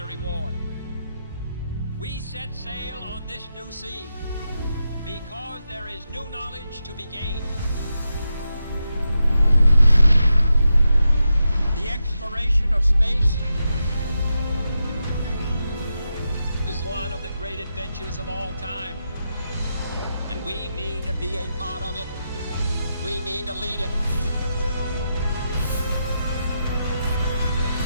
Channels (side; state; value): both; inverted; correlation -0.87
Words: reward. We set sail on this new sea because there is new knowledge to be gained. The exploration of space is one of the great adventures of all time. And we mean to be a part of it. We mean to lead it.